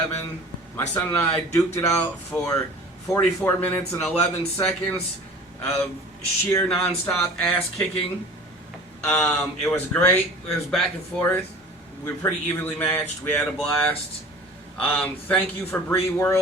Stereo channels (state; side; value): normal; both; correlation 0.42